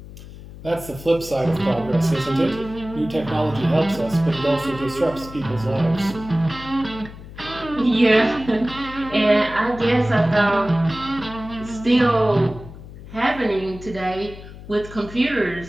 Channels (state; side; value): noise; left; hum, 15 dB below the sound